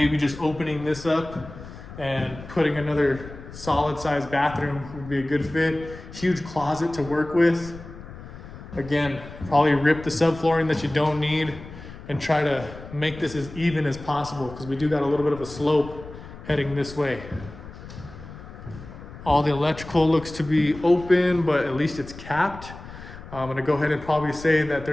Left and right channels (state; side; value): noise; left; rumble, 15 dB below the sound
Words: just opening this up and putting another solid sized bathroom would be a good fit. Huge closet to work with. Again, probably rip the subflooring that you don't need and try to make this as even as possible because we do got a little bit of a slope heading this way. All the electrical looks to be open, but at least it's capped. I'm gonna go ahead and probably say that